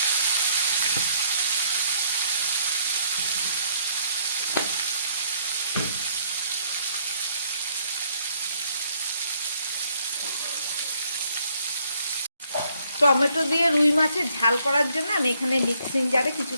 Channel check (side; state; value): both; inverted; correlation -0.68